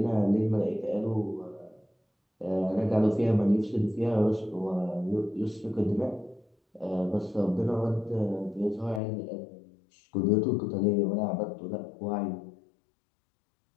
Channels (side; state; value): right; drops out; at 9.0 s